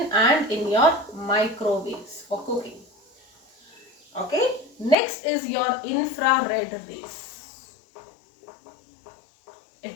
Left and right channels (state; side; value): drops out; right; at 5.0 s